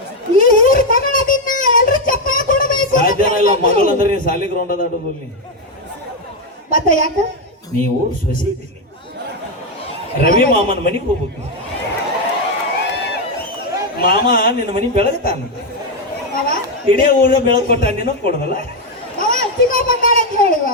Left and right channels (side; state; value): both; normal; correlation 0.05